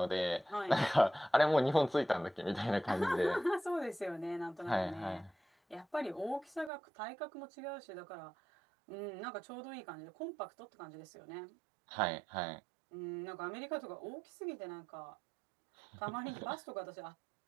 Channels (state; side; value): drops out; left; at 6.7 s